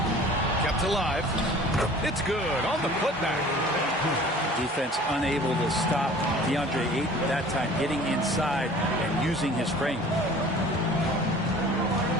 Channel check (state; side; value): normal; both; correlation 0.47